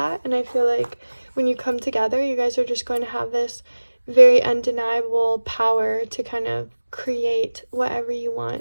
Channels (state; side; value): inverted; both; correlation -1.00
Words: And I feel like when you come together, you guys are just going to have this very undeniable power to kind of create whatever you